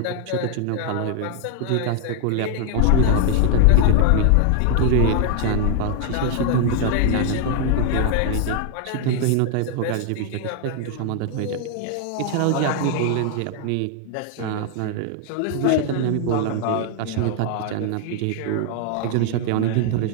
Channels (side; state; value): both; different; correlation 0.00